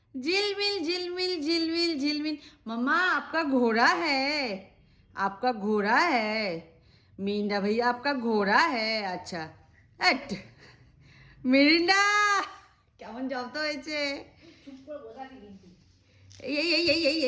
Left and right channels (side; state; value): both; identical; correlation 1.00